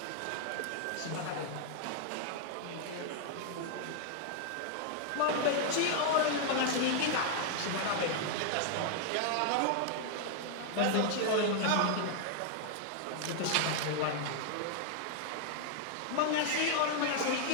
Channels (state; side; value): different; both; correlation 0.00